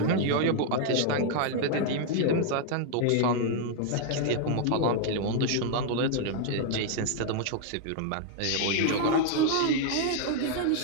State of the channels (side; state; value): both; different; correlation 0.00